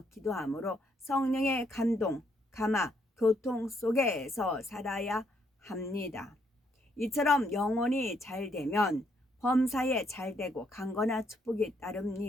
기도함으로 성령의 감동, 감화, 교통 속에서 살아야 합니다. 이처럼 영혼이 잘 되면 범사에 잘 되고 강건한 축복이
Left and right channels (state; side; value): normal; both; correlation 0.72